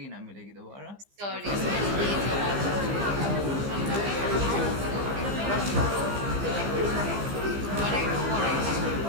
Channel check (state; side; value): late; left; 15 ms